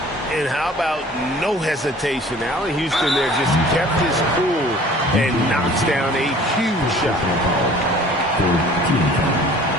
And how about no hesitation? Allen Houston there just kept his cool and knocks down a huge shot.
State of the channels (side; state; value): both; normal; correlation 0.49